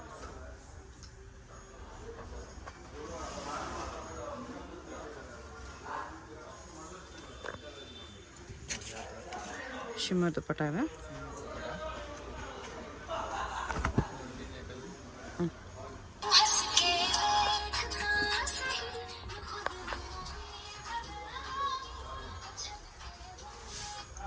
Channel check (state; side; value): identical; both; correlation 1.00